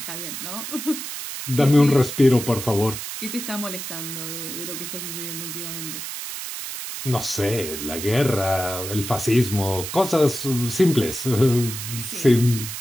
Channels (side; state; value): right; noise; hiss, 7 dB below the sound